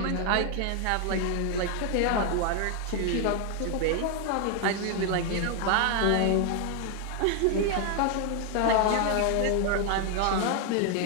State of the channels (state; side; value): different; both; correlation 0.00